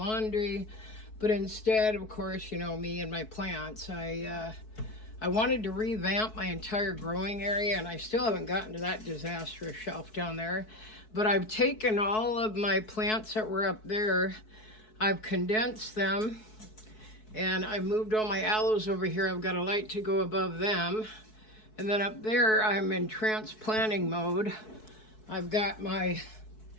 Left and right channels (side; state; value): right; late; 4.6 ms